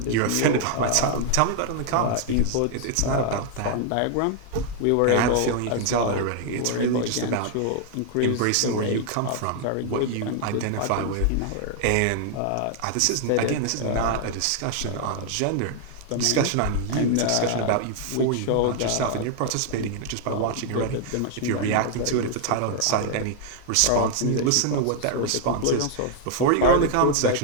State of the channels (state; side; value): different; both; correlation 0.00